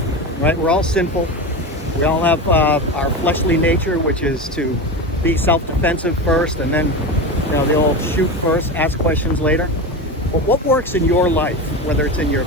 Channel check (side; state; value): both; normal; correlation 0.23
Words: right? We're all sinful. We all have our fleshly nature, which is to be self-defensive first, and then, you know, the old shoot first, ask questions later. But what works in your life, whether it's in your